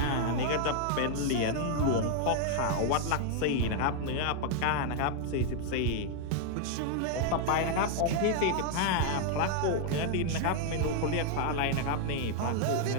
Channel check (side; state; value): both; different; correlation 0.00